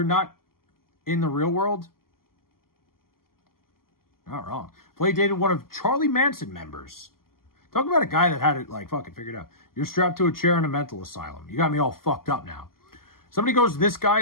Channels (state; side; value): late; right; 0.92 ms